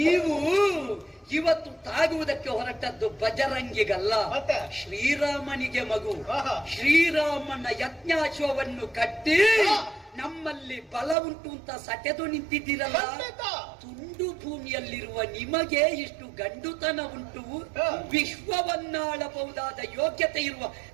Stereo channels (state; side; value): drops out; left; at 11.2 s